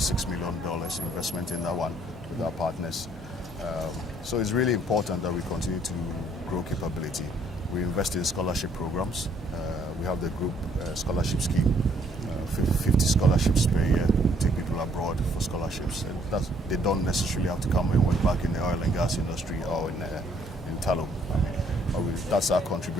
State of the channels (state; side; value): normal; both; correlation 0.65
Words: million investment in that one with our partners. So it's really important that we continue to grow capability. We invest in scholarship programs. We have the group scholarship scheme, 50 scholarships per year. We take people abroad for scholarships. And they don't necessarily have to come and work back in the oil and gas industry or in tallow. That's our